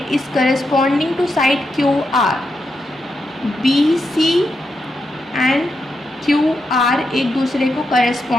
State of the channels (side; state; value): both; normal; correlation 0.85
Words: is corresponding to side QR, BC and QR एक दूसरे को